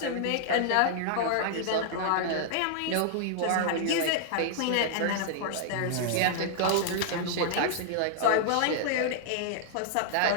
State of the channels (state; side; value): different; both; correlation -0.01